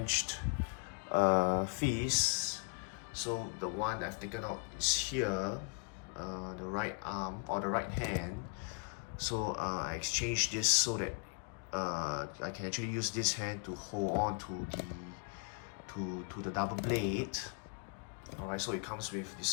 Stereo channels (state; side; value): quieter; right; 38.7 dB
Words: fists. So the one I've taken out is here, the right arm or the right hand. So I exchanged this so that I can actually use this hand to hold on to the double blade. Alright, so it comes with